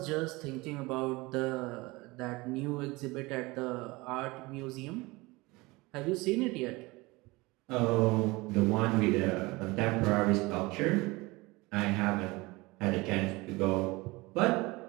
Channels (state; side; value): quieter; left; 22.8 dB